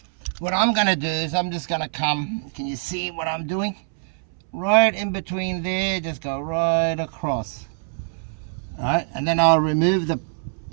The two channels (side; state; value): left; silent; 63 dB below the other